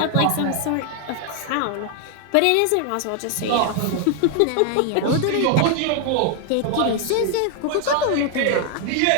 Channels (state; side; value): different; both; correlation 0.01